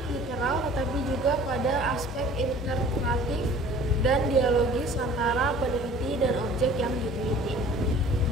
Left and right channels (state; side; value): normal; both; correlation 0.48